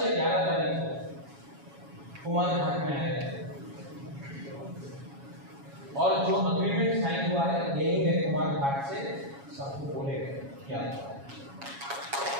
या 11 तारीख को कुमार घाट में आएगा, और जो अग्रीमेंट साइन हुआ है यही है, कुमार घाट से सबको बोलेगा क्या हुआ है।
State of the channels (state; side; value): late; left; 7.2 ms